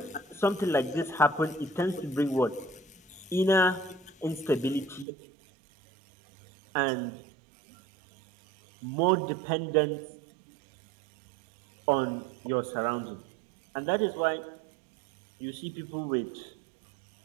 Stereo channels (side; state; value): left; drops out; at 5.1 s